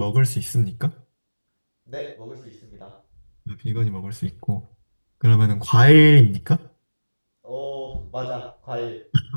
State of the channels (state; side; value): inverted; both; correlation -1.00